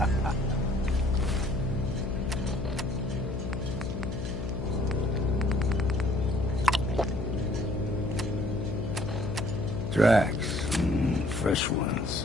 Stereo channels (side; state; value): left; noise; hum, 5 dB below the sound